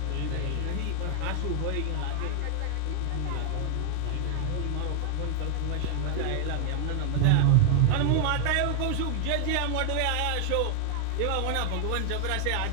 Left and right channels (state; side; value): different; both; correlation 0.00